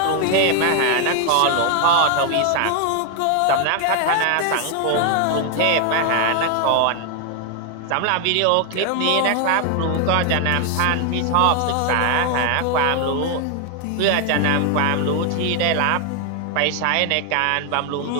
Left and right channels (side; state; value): both; different; correlation 0.00